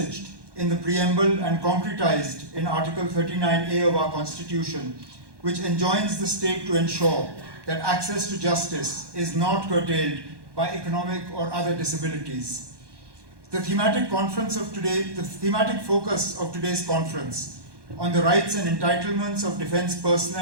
in the preamble and concretized in Article 39A of our Constitution, which enjoins the state to ensure that access to justice is not curtailed by economic or other disabilities. The thematic focus of today's conference on the rights and entitlements of defense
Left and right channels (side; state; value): left; late; 1.2 ms